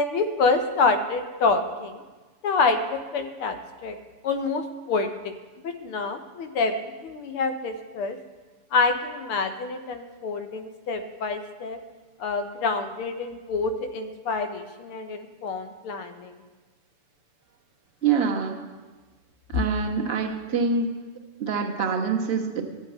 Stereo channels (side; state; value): right; late; 6.9 ms